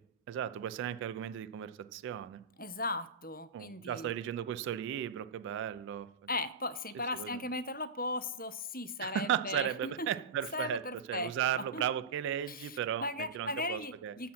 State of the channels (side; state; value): left; quieter; 4.3 dB